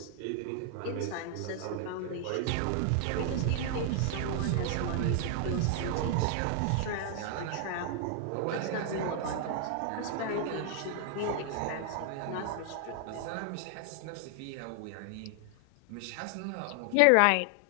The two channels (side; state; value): both; different; correlation 0.00